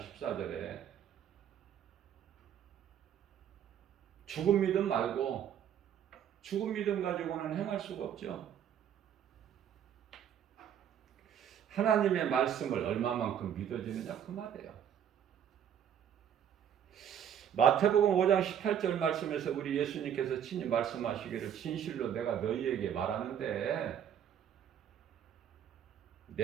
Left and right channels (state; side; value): quieter; left; 9.2 dB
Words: 죽은 믿음 말고, 죽은 믿음 가지고는 행할 수가 없죠. 하나님의 말씀을 얼마만큼 믿어지느냐 그 말이에요. 마태복음 5장 18절 말씀에서 우리 예수님께서 친히 말씀하시기를 진실로 내가 너희에게 말하는데,